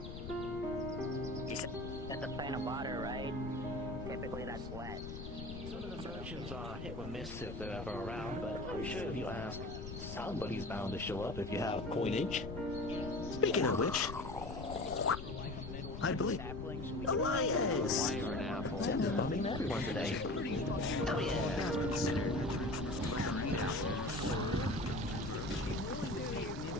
You said that's a plant of water, right? Typically that's wet. Some of the merchants are hit or miss if they're ever around, but I'm sure if you ask, somebody's bound to show up if you have coinage. Speaking of which, I believe Elias! Sam is bumming everyone today. Oh yeah!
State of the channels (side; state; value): left; noise; rumble, 8 dB below the sound